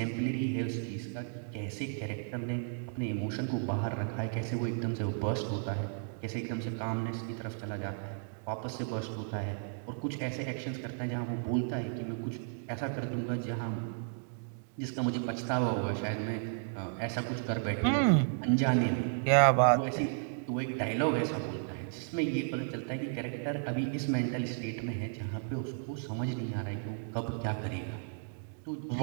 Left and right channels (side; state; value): left; silent; digital silence